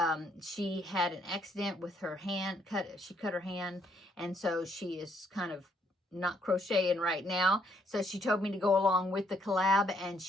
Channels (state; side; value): normal; both; correlation 0.70